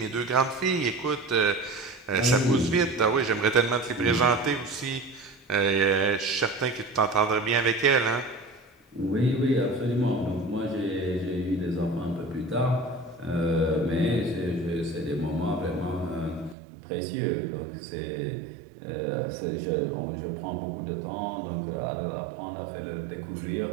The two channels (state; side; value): drops out; left; at 16.6 s